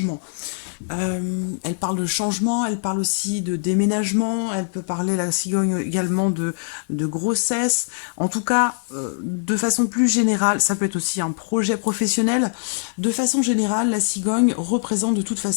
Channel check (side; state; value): right; silent; 64 dB below the other